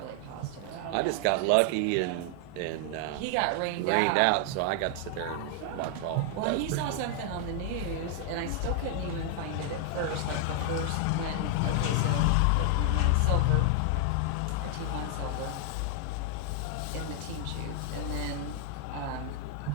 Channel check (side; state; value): both; different; correlation 0.00